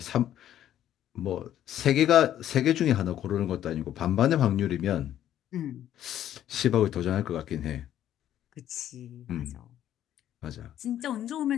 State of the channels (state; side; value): quieter; right; 11.5 dB